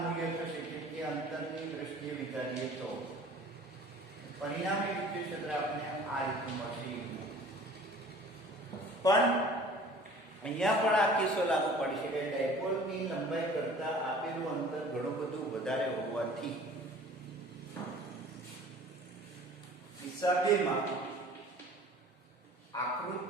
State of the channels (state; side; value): normal; both; correlation 0.47